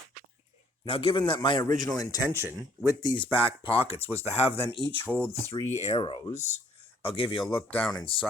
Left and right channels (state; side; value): normal; both; correlation 0.62